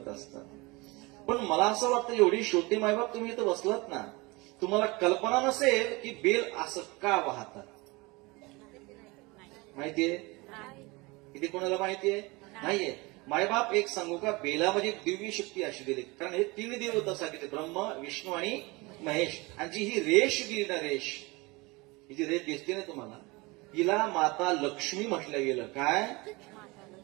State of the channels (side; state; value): left; quieter; 24.5 dB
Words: असतात. पण मला असं वाटतं, एवढी शेवटी मायबाप तुम्ही इथं बसलात ना, तुम्हाला कल्पना नसेल की बेल असं का वाहतात. माहितीये? किती कोणाला माहितीये? नाहीये. मायबाप एक सांगू का, बेलामध्ये दिव्य शक्ती अशी दिली. कारण हे 3 देवता सांगितले, ब्रह्म, विष्णू आणि महेश. आणि जी ही रेष दिली ना, रेष, ही जी रेष दिसते ना तुम्हाला, हिला माता लक्ष्मी म्हटलं गेलं. काय?